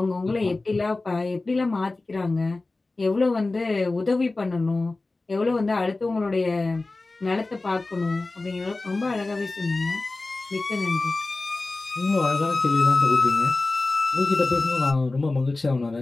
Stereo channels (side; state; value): right; quieter; 3.3 dB